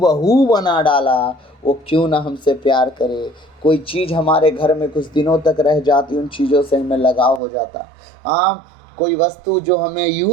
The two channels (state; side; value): drops out; left; at 7.4 s